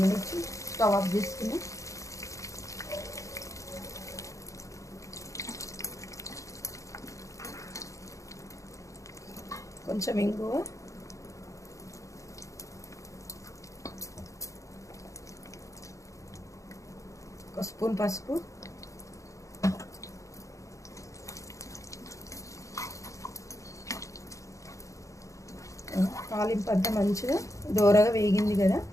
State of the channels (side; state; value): right; late; 0.15 ms